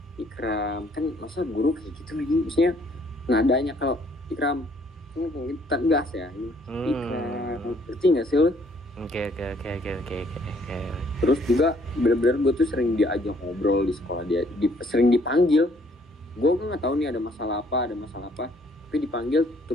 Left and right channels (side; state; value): both; normal; correlation 0.63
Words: Ikram, kan masa guru kayak gitu lagi, maksudnya nadanya kalau Ikram tegas ya, Ikram, ngerti nggak sih lo? Oke. Terus juga benar-benar gue tuh sering diajak ngobrol di sekolah, sering dipanggil. Gue nggak tahu nih ada masalah apa, tapi dipanggil